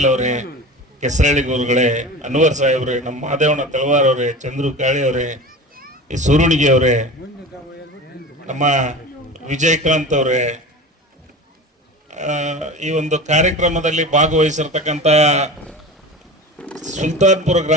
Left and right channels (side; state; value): both; normal; correlation 0.33